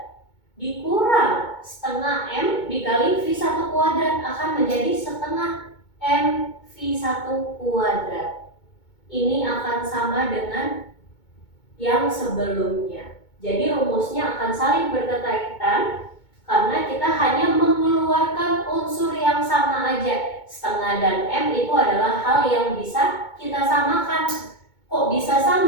Dikurang setengah M dikali V1 kuadrat akan menjadi setengah M V1 kuadrat. Ini akan sama dengan yang sebelumnya. Jadi rumusnya akan saling berkaitan karena kita hanya mengeluarkan unsur yang sama aja. Setengah dan M itu adalah hal yang bisa kita samakan. Kok bisa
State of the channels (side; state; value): right; late; 2.2 ms